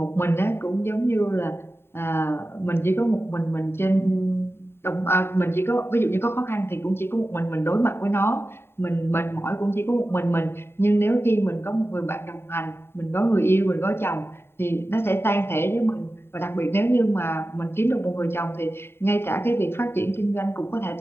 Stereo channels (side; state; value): right; late; 0.11 ms